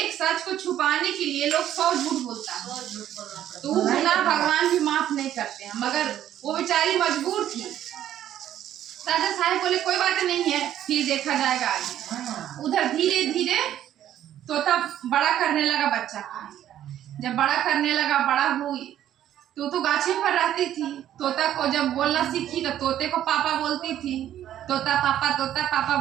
सच को छुपाने के लिए लोग 100 झूठ बोलता है, तो वो गुनाह भगवान भी माफ नहीं करते हैं, मगर वो बेचारी मजबूर थी। राजा साहब बोले कोई बात नहीं है, फिर देखा जाएगा आगे। उधर धीरे धीरे तोता बड़ा करने लगा बच्चा का। जब बड़ा करने लगा, बड़ा हुई तो गाछे पर रहती थी। तोता को जब बोलना सीखी तो तोते को पापा बोलती थी, तोता पापा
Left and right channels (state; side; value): quieter; left; 11.5 dB